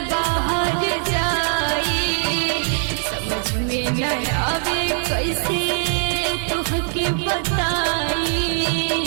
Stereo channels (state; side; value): silent; left; digital silence